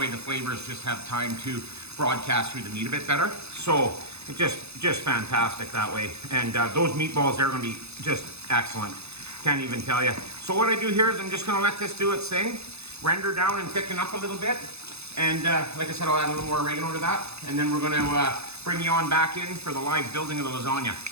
the flavors just have time to broadcast through the meat a bit better. So it's just fantastic that way. And those meatballs, they're gonna be just excellent. Can't even tell you. So what I do here is I'm just gonna let this do its thing, render down and thicken up a little bit. And like I said, I'll add a little more oregano to that. And then we're gonna bring you on back in for the live building of the lasagna.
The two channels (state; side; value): late; left; 0.80 ms